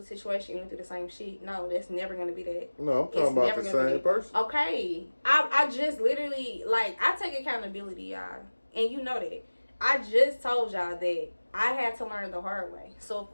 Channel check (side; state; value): both; inverted; correlation -1.00